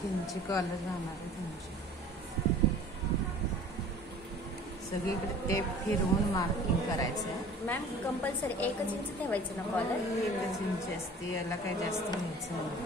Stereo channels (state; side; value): normal; both; correlation 0.45